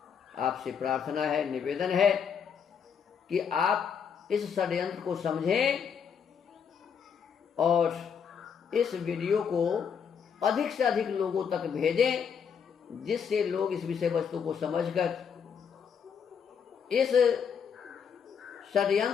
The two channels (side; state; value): right; quieter; 7.0 dB